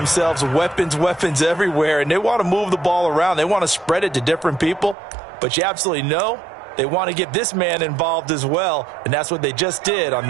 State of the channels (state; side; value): drops out; left; at 5.0 s